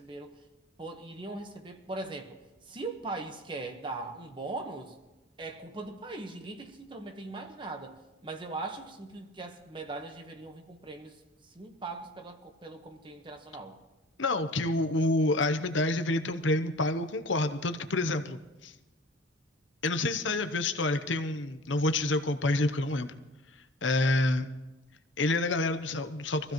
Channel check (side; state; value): both; normal; correlation 0.44